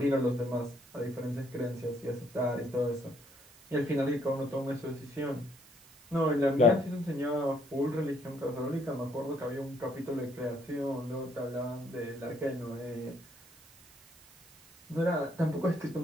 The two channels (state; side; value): noise; right; hiss, 24 dB below the sound